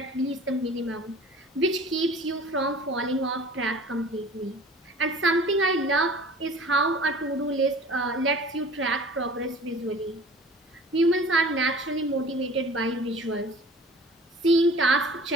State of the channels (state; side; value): normal; both; correlation 0.46